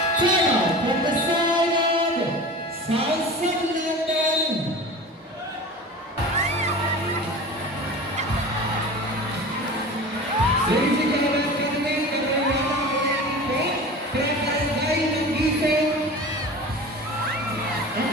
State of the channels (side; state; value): both; normal; correlation 0.35